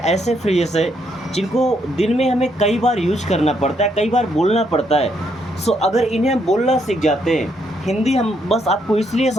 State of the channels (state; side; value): normal; both; correlation 0.74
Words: फ्रेजेस है जिनको दिन में हमें कई बार यूज करना पड़ता है, कई बार बोलना पड़ता है। सो अगर इन्हें हम बोलना सीख जाते हैं, हिंदी हम बस आपको इसलिए